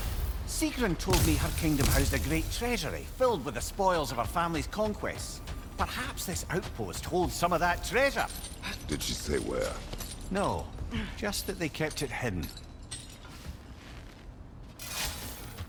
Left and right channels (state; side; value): identical; both; correlation 1.00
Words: Sigrun told me her kingdom housed a great treasury filled with the spoils of her family's conquests. Perhaps this outpost holds some of that treasure. Did she say where? No, just that they kept it hidden.